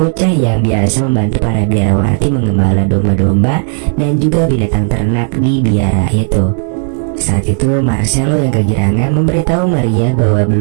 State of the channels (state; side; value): silent; left; 55 dB below the other